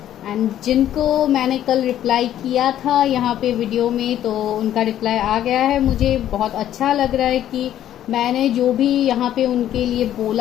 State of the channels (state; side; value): quieter; right; 11.6 dB